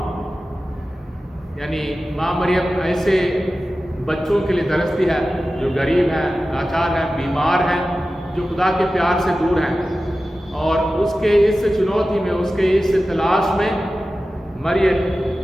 यानी माँ मरियम ऐसे बच्चों के लिए तरसती है जो गरीब हैं, लाचार हैं, बीमार हैं, जो खुदा के प्यार से दूर हैं। और उसके इस चुनौती में, उसके इस तलाश में मरियम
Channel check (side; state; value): both; normal; correlation 0.94